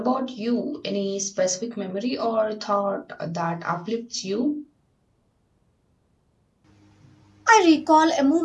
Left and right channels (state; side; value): identical; both; correlation 1.00